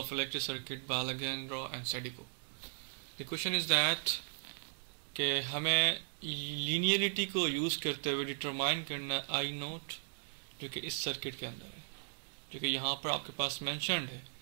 Electric Circuit by Alejandro and Sadico. The question is that कि हमें लीनियरिटी को यूज़ करते हुए डिटरमाइन करना आई नोट जो कि इस सर्किट के अंदर है, जो कि यहाँ पर आपके पास मेंशन्ड है।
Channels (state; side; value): silent; left; digital silence